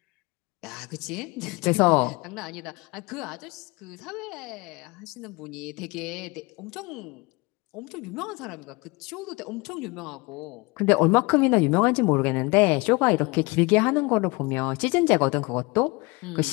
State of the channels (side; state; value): right; quieter; 25.9 dB